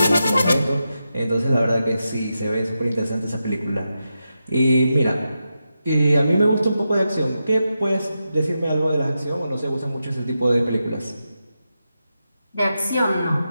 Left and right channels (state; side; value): inverted; both; correlation -0.89